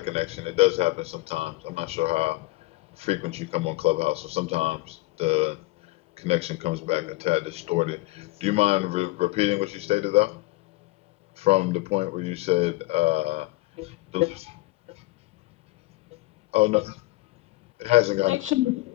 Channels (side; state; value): right; quieter; 20.8 dB